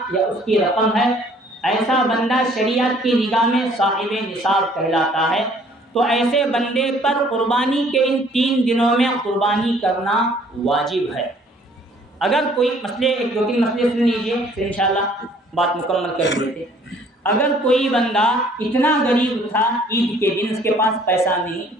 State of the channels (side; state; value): both; normal; correlation 0.58